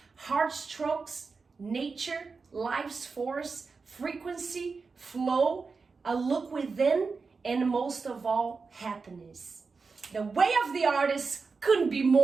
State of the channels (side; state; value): left; quieter; 4.6 dB